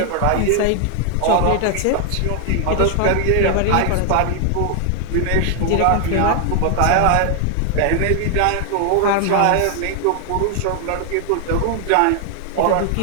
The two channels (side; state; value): both; different; correlation 0.00